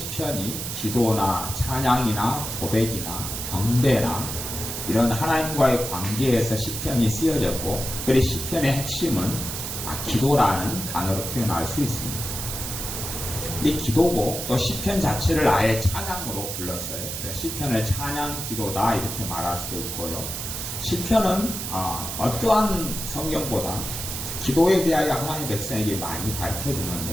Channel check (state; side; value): noise; right; hiss, 5 dB below the sound